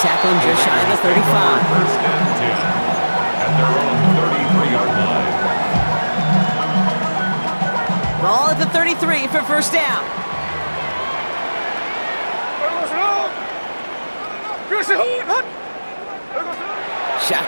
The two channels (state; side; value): inverted; both; correlation -1.00